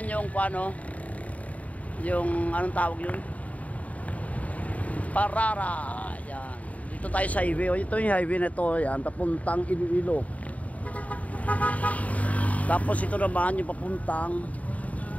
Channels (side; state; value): right; late; 0.069 ms